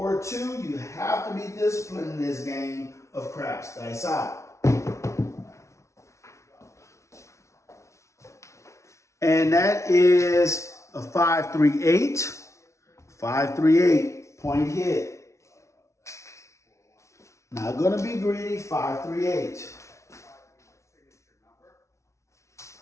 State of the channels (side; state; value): right; late; 0.14 ms